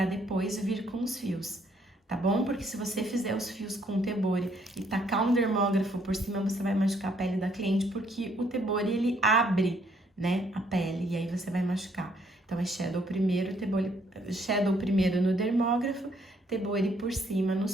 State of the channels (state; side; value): normal; both; correlation 0.68